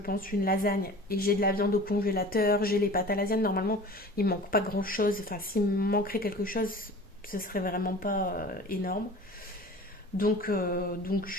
une lasagne et j'ai de la viande au congélateur, j'ai les pâtes à lasagne. Normalement il ne manque pas grand chose, enfin s'il me manquerait quelque chose ce serait vraiment pas énorme. Donc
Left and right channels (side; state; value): both; normal; correlation 0.41